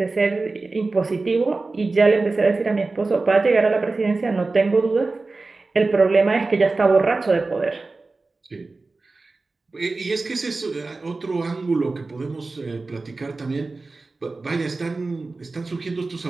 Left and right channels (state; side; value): quieter; left; 3.6 dB